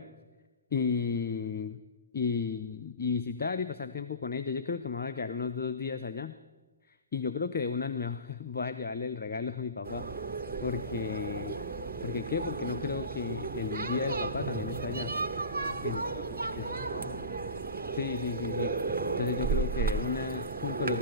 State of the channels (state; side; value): inverted; both; correlation -0.33